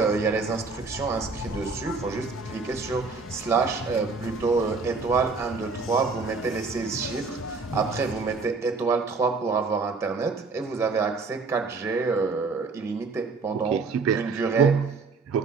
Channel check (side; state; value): left; quieter; 4.3 dB